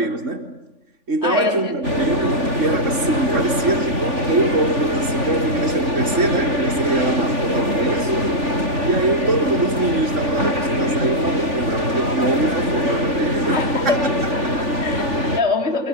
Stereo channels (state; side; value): late; left; 3.5 ms